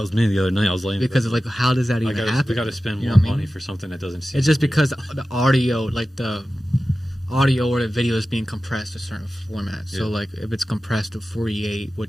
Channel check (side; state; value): both; normal; correlation 0.95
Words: was me the other night. I was laying Because of like, how does that even happen? We got to spend You know more what I mean? money for something that doesn't seem. It's just real. because the audio, like the audio or the video is being compressed to a certain format. So Yeah. like if it's compressed to 48,